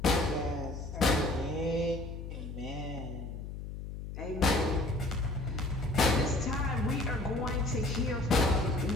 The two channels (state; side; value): noise; left; hum, 8 dB below the sound